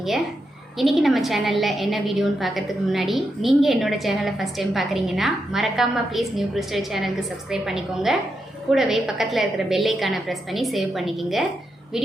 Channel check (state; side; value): normal; both; correlation 0.85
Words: இன்னைக்கு நம்ம சேனல்ல என்ன வீடியோன்னு பார்க்கிறதுக்கு முன்னாடி நீங்க என்னோட சேனலை ஃபர்ஸ்ட் டைம் பார்க்கறீங்கன்னா மறக்காம ப்ளீஸ் நியூ கிறிஸ்டல் சேனலுக்கு சப்ஸ்கிரைப் பண்ணிக்கோங்க. கூடவே பக்கத்துல இருக்கிற பெல் ஐகானை பிரஸ் பண்ணி சேவ் பண்ணிக்கங்க.